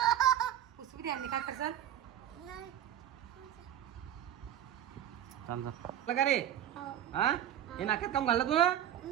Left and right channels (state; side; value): quieter; left; 10.8 dB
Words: पुसवी द्या. काय करसाल? का रे? हे नाक्यात काम घाललं तू